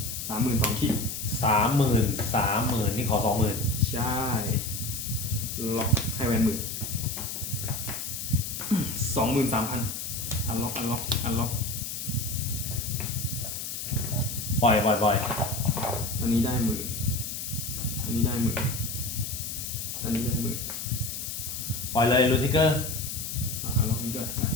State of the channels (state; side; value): noise; left; hiss, 5 dB below the sound